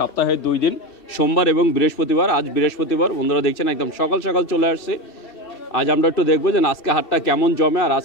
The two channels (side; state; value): right; late; 2.6 ms